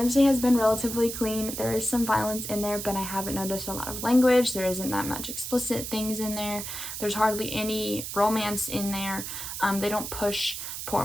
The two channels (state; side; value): noise; right; hiss, 6 dB below the sound